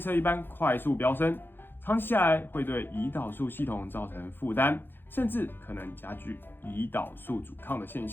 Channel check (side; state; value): right; late; 0.10 ms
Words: 一般快速飙升。长期下来会对胰岛素系统造成负担，甚至可能加剧胰岛素阻抗的现